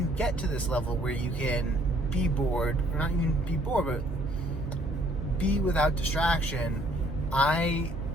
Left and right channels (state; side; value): normal; both; correlation 0.63